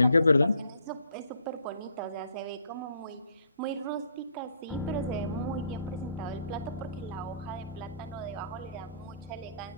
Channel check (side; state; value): both; inverted; correlation -0.64